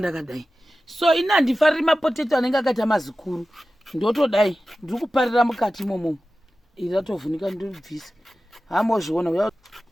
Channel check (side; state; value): both; normal; correlation 0.95